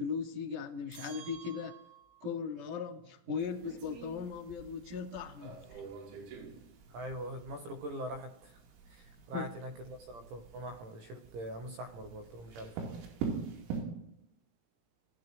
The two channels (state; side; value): late; left; 17 ms